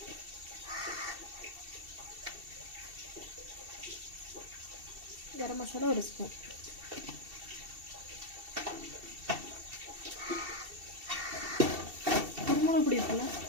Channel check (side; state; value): left; late; 2.7 ms